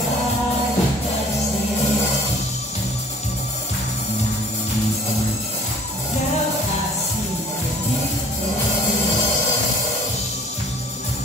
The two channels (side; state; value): both; normal; correlation 0.51